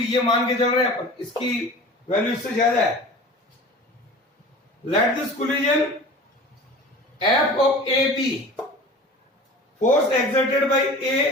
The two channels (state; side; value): normal; both; correlation 0.39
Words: मान के चल रहे हैं अपन, इसकी value इससे ज्यादा है. Let this collision F of AB, force exerted by